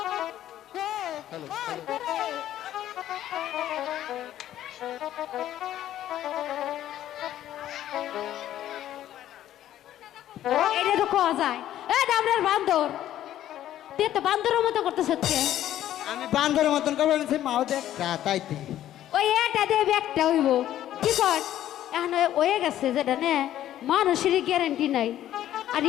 এটা তো কোয়া যায়। এই ঢামলার বান্দর, তুই তো বান্দরের মতো করতেছ হচ্ছে। আমি বান্দরের মতন করবো না, মাও দেখ তাইতে। ওই এটা দিয়ে ব্যাগটা হইব কি কর। এখন হয়ে গেছে যেটা নে, মানুষেরই গ্যারান্টি নাই, আর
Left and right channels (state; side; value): quieter; right; 12.3 dB